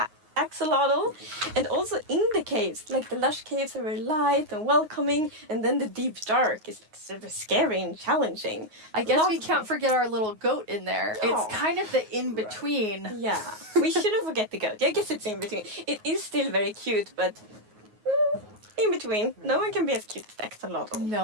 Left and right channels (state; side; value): late; left; 9.5 ms